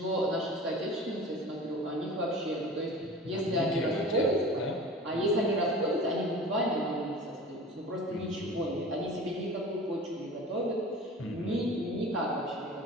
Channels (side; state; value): both; normal; correlation 0.38